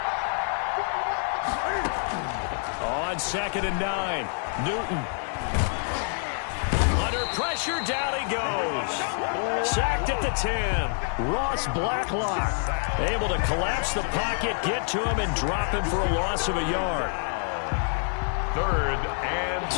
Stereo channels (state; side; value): silent; right; 57 dB below the other